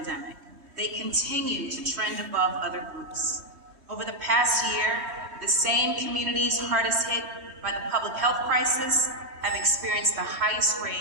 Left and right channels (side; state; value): left; late; 3.2 ms